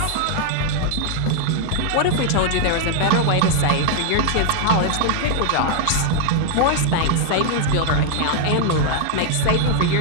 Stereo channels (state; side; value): different; both; correlation 0.00